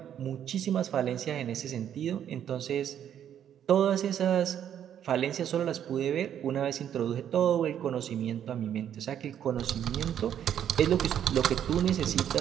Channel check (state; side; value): quieter; left; 9.7 dB